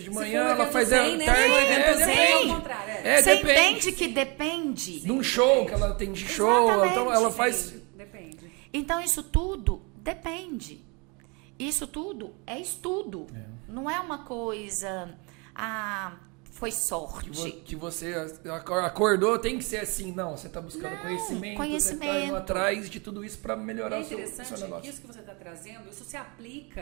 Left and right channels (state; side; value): quieter; left; 30.4 dB